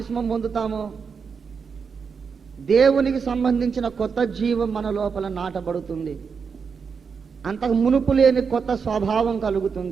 పొందుతామో దేవునికి సంబంధించిన కొత్త జీవం మన లోపల నాటబడుతుంది. అంతకు మునుపు లేని కొత్త స్వభావం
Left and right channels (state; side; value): quieter; left; 5.9 dB